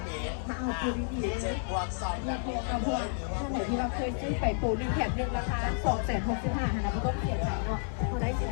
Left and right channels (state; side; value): silent; right; 57 dB below the other